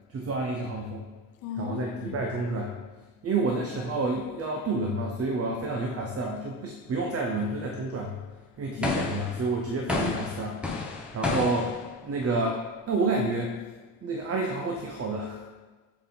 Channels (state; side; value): normal; both; correlation 0.24